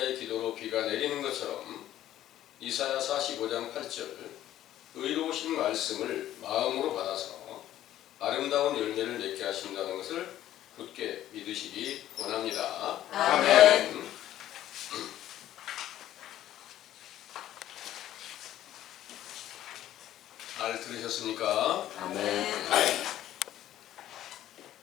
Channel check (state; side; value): quieter; right; 12.8 dB